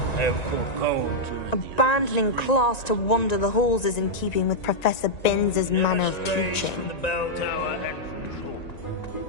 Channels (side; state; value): right; late; 1.9 ms